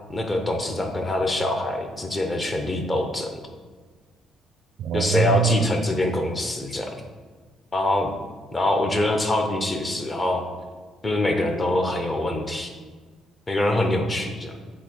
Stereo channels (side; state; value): both; normal; correlation 0.75